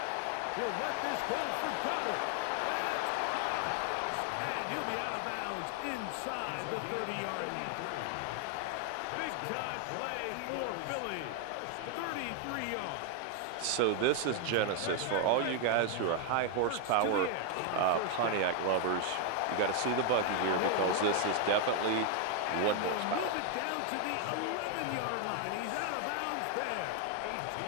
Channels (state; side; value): different; both; correlation 0.00